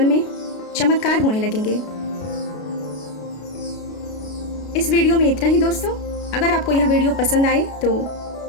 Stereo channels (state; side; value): late; right; 33 ms